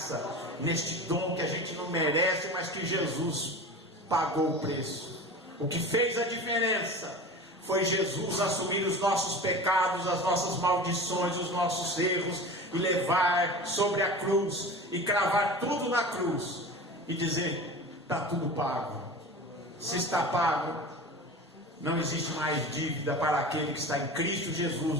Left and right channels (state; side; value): normal; both; correlation 0.33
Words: neste dom que a gente não merece, mas que Jesus pagou o preço. O que fez a diferença foi Jesus assumir os nossos pecados, as nossas maldições, os nossos erros, e levar sobre a cruz, e cravar tudo na cruz, e dizer: está tudo pago. Se está pago, não existe mais dívida para aquele que está em Cristo